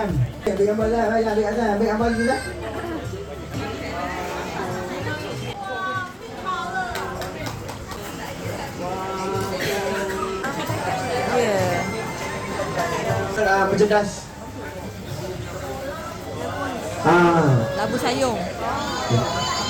Ambil gambar lah, ambil atas, ambil gambar dulu lah. Merchandise. Labu sayung.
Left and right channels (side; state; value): both; identical; correlation 1.00